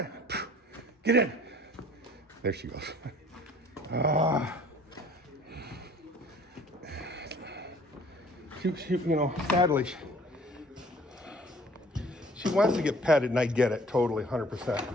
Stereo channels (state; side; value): normal; both; correlation 0.53